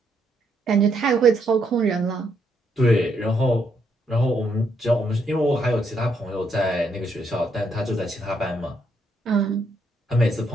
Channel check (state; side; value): normal; both; correlation 0.75